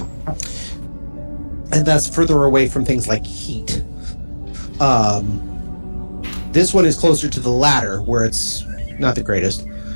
And that's further away from things like heat. This one is closer to the latter, where it's not the greatest.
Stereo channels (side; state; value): both; inverted; correlation -1.00